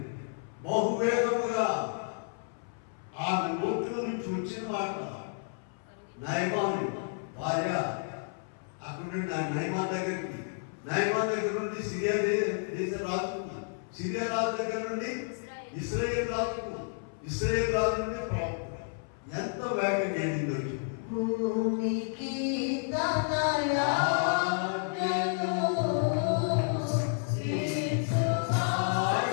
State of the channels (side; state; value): right; silent; 57 dB below the other